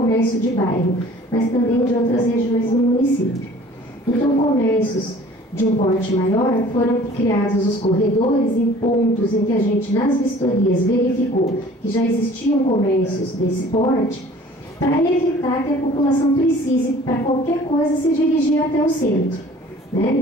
de bairro, mas também de outras regiões do município. Então, comércios de um porte maior, foram criados os corredores em pontos em que a gente, nas vistorias, verificou que já existiam comércios desse porte, para evitar que a população precise, para qualquer coisa, se dirigir até o centro.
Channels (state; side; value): normal; both; correlation 0.49